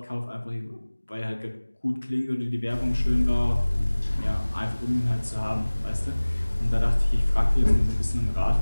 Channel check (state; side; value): inverted; both; correlation -1.00